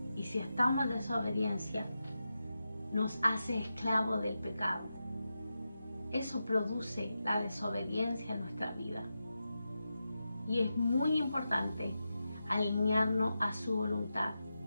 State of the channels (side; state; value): both; inverted; correlation -0.90